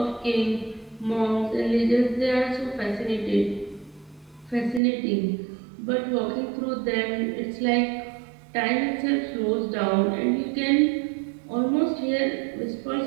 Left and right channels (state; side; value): drops out; left; at 4.8 s